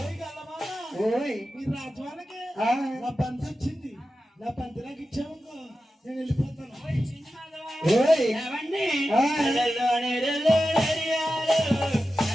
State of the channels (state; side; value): normal; both; correlation 0.92